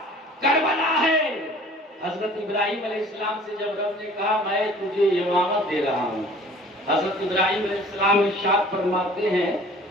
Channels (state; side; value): normal; both; correlation 0.49